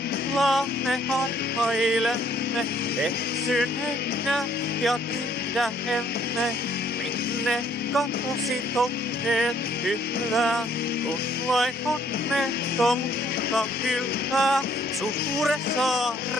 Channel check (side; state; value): both; normal; correlation 0.63